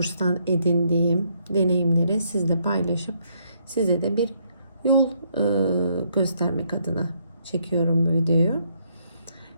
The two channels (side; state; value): both; inverted; correlation -0.72